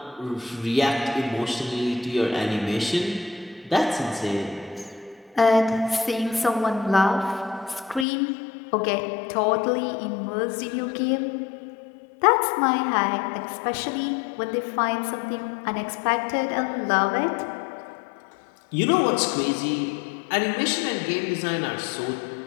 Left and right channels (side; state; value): right; drops out; at 8.1 s